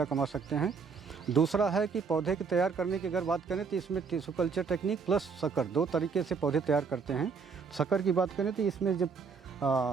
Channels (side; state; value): left; quieter; 5.4 dB